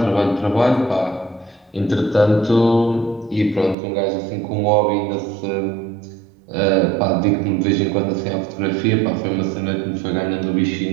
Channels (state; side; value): drops out; left; at 3.8 s